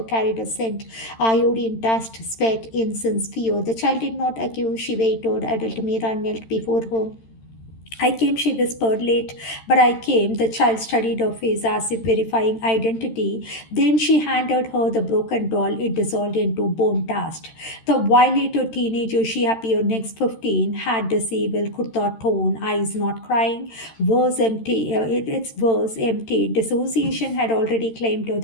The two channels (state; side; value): late; right; 13 ms